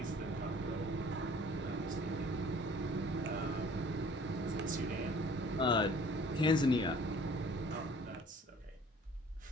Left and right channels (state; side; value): normal; both; correlation 0.52